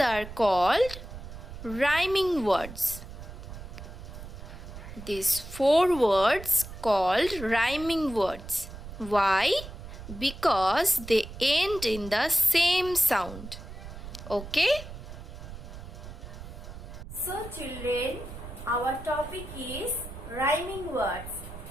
called rhyming words. These four words called rhyming words. Why? Because they end in the same sound. Okay? So children, our topic is rhyming words.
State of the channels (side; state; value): right; noise; rumble, 12 dB below the sound